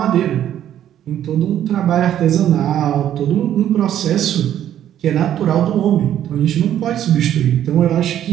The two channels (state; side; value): quieter; left; 11.0 dB